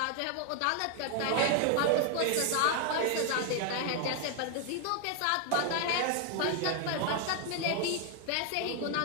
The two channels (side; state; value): both; different; correlation 0.00